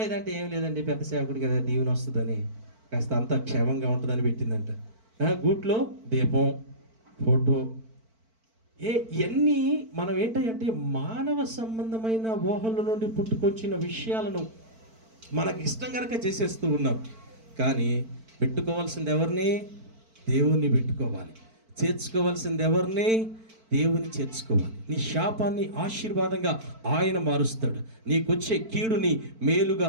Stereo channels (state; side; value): late; left; 4.5 ms